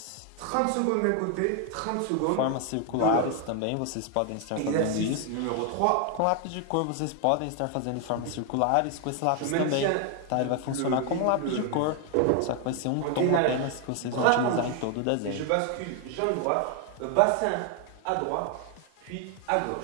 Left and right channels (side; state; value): both; different; correlation 0.01